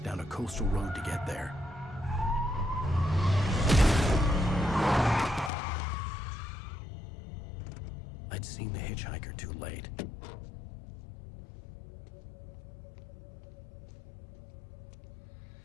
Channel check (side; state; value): right; drops out; at 5.5 s